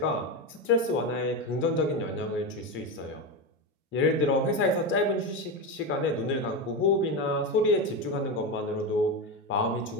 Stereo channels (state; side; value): normal; both; correlation 0.16